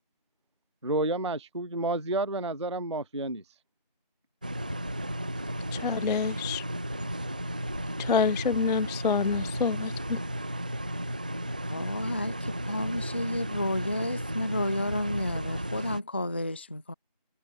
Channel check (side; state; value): both; inverted; correlation -0.47